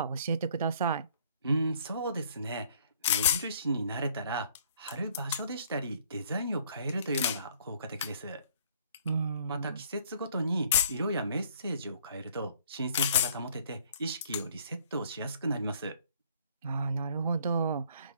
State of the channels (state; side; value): inverted; both; correlation -0.58